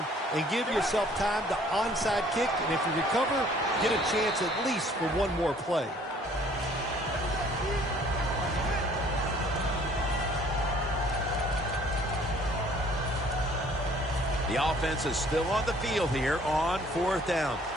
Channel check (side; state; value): both; normal; correlation 0.57